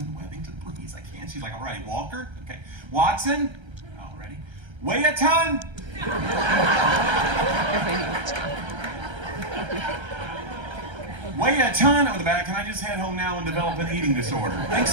please. I can't. She's like, all right, Walker. Okay. Watson. All righty. Weigh a ton. Weigh a ton. I'm in the back. Can I just head home now and develop an eating disorder? Thanks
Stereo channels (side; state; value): left; late; 1.3 ms